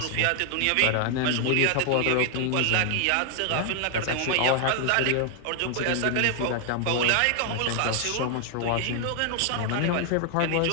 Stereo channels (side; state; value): both; different; correlation 0.00